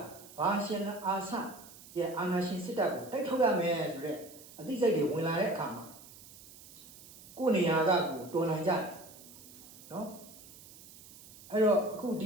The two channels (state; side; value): noise; right; hiss, 19 dB below the sound